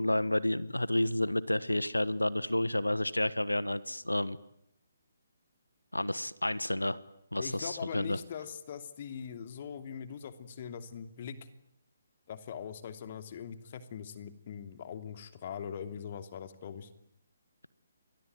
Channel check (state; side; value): inverted; both; correlation -0.97